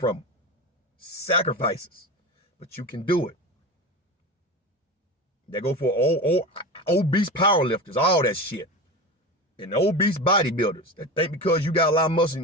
them. Sacrifices. But you can do it. They go for obese powerlifters, all that shit. And obese bodybuilders that think because you got a lot of muscle,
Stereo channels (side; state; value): both; normal; correlation 0.27